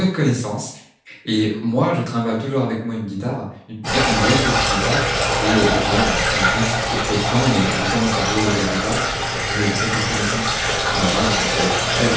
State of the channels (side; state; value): both; identical; correlation 1.00